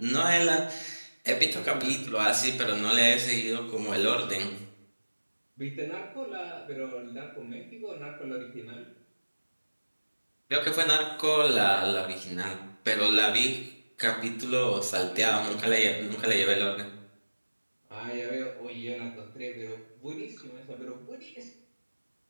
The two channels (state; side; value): inverted; both; correlation -1.00